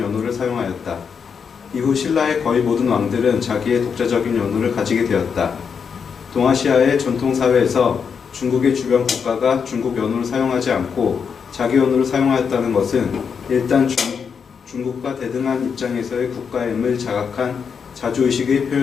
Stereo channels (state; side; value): quieter; right; 6.4 dB